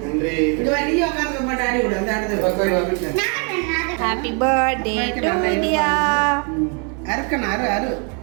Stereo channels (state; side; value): quieter; left; 37.7 dB